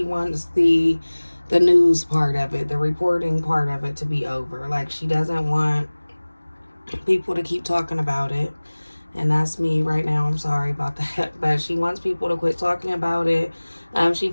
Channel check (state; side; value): inverted; both; correlation -1.00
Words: wants the news part of it, the reporting part of it to be over. Like she doesn't want people to keep talking about it. And that's me right now. I'm sorry about that. But she wants people to quit talking about it. She